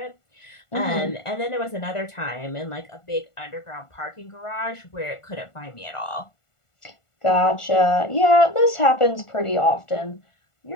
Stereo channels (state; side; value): late; right; 1.4 ms